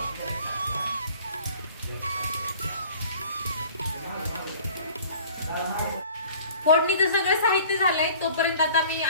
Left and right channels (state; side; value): inverted; both; correlation -0.48